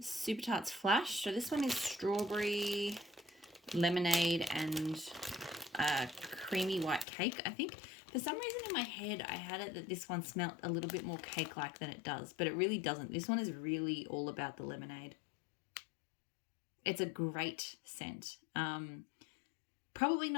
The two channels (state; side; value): drops out; right; at 7.1 s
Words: Super Tarts Flash. So this one is strawberry, lemonade, and creamy white cake, I think. For some reason in my head, I had it that this one smelt a little bit more cake-like than it does, but it really doesn't. This one is really all about the lemonade. It's a great scent. Probably